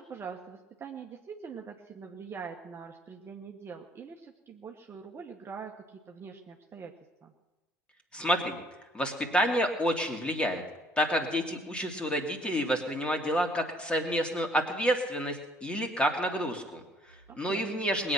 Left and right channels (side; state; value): both; normal; correlation 0.61